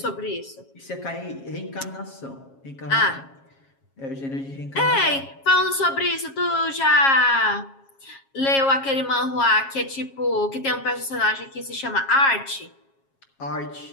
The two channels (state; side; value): late; right; 7.4 ms